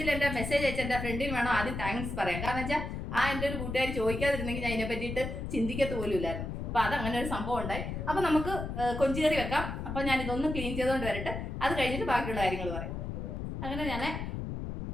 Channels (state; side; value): noise; left; rumble, 5 dB below the sound